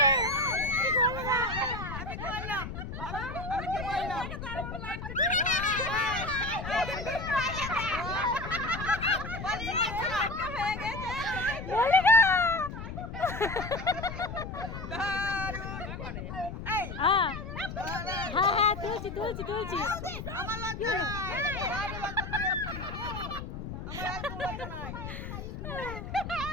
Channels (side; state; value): left; noise; rumble, 8 dB below the sound